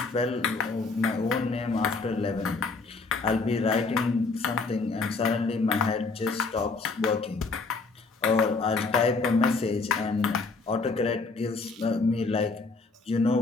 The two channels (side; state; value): right; quieter; 4.0 dB